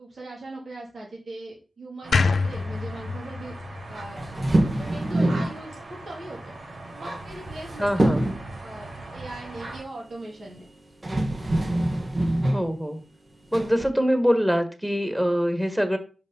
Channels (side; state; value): both; normal; correlation 0.96